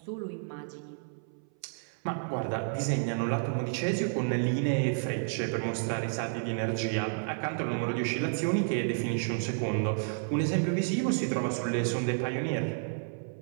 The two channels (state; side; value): silent; left; 57 dB below the other